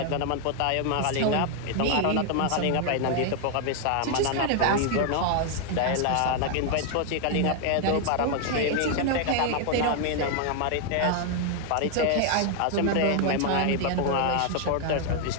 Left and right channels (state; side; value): different; both; correlation 0.00